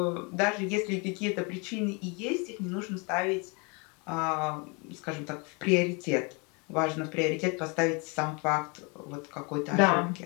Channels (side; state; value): right; quieter; 31.4 dB